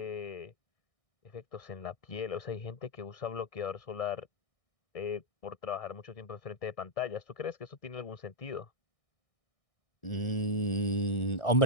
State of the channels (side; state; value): right; late; 1.6 ms